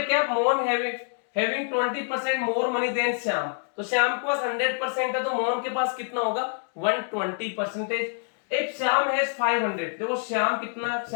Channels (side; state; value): right; silent; 61 dB below the other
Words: क्या, Mohan having 20% more money than Shyam, तो श्याम के पास 100% है, तो मोहन के पास कितना होगा 120%। इफ श्याम हैज 500, देखो श्याम के